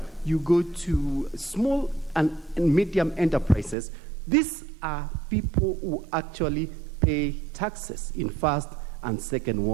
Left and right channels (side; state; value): left; drops out; at 3.8 s